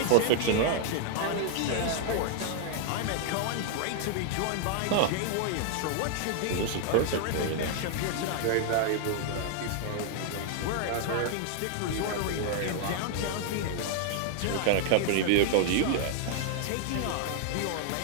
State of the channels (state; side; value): different; both; correlation 0.00